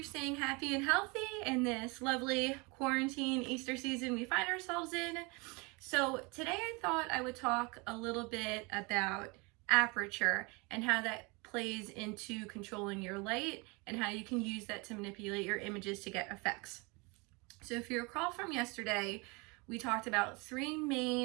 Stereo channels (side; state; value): left; quieter; 28.3 dB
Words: staying happy and healthy in this lovely quarantine Easter season we find ourselves in. So today I thought I would talk a little bit about aperture and how that plays into controlling your light and how you can use that to manipulate your images to get effects. So if you recall from yesterday, we talked about three